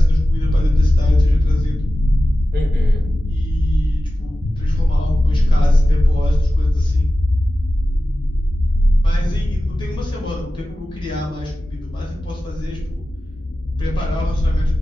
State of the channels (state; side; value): normal; both; correlation 0.95